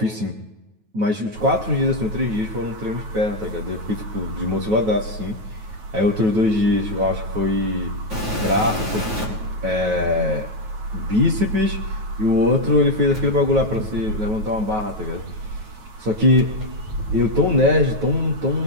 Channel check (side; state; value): left; late; 9.3 ms